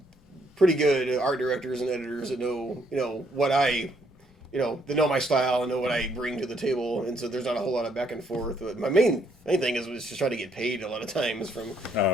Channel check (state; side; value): normal; both; correlation 0.70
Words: good art directors and editors that know what I. They know my style and know what I bring to the table, and so there's not a whole lot of back and forth. But my main thing is just trying to get paid a lot of times from